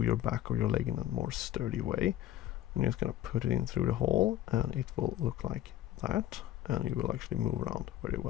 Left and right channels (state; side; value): quieter; right; 12.8 dB